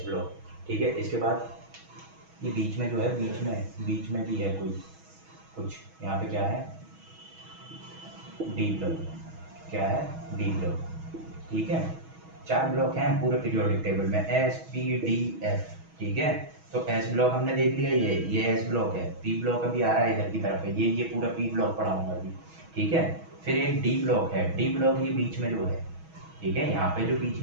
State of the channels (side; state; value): left; late; 6.2 ms